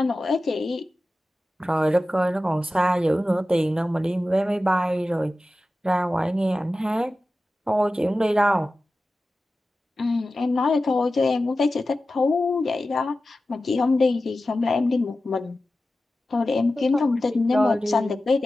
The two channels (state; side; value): normal; both; correlation 0.94